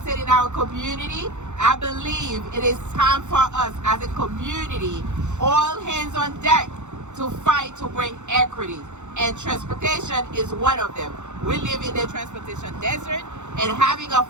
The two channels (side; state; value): left; late; 0.84 ms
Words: in our community, I believe it is time for us as a community, all hands on deck, to fight to bring equity. And transportation is one of them. We live in the transportation desert, and having a